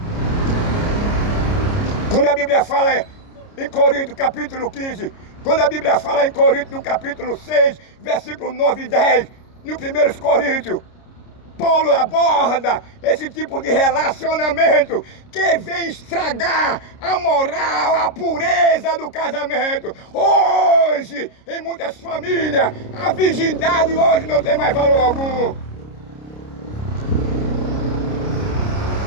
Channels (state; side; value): late; right; 29 ms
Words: Quando a Bíblia fala em Coríntios, capítulo 15, quando a Bíblia fala em Coríntios, no capítulo 6, versículo 9 e 10, no 1 Coríntios, Paulo aborda esse tipo de relacionamento que vem estragar a moral, a pureza do casamento. Hoje, em muitas famílias, a virgindade hoje não tem mais valor algum.